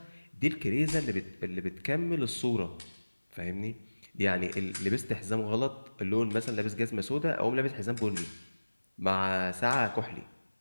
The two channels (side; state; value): both; inverted; correlation -1.00